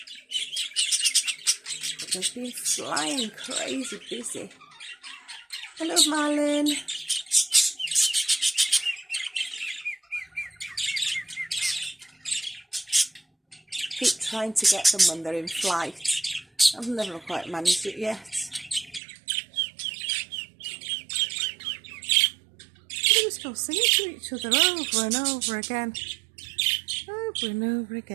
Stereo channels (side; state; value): left; drops out; at 19.0 s